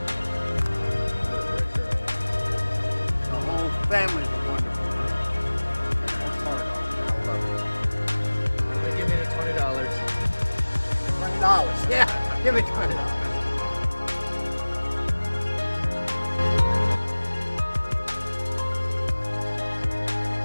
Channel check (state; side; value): inverted; both; correlation -1.00